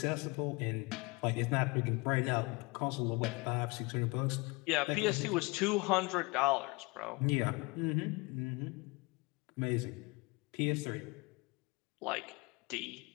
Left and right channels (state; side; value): quieter; right; 26.5 dB